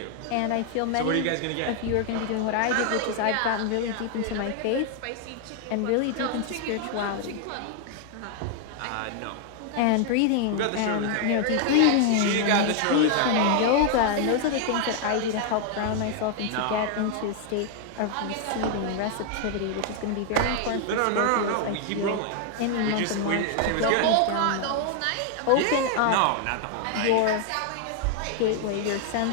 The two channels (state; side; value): different; both; correlation 0.00